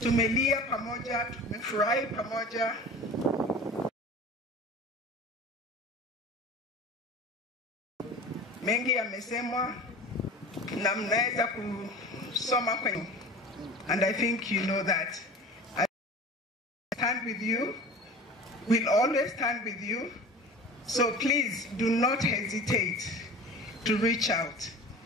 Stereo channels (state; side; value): normal; both; correlation 0.37